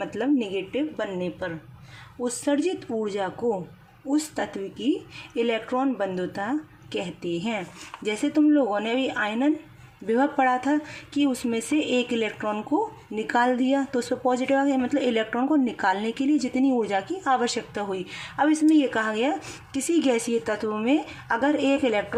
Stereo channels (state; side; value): identical; both; correlation 1.00